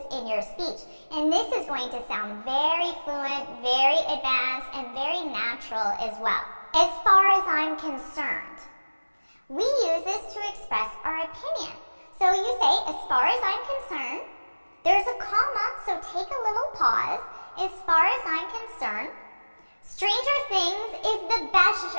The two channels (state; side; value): inverted; both; correlation -1.00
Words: in your speech. And this is going to sound very fluent, very advanced, and very natural as well. As far as I'm concerned, we use this to express our opinion. So you say, as far as I'm concerned, there's a comma, so take a little pause. As far as I'm concerned, Stranger Things is the best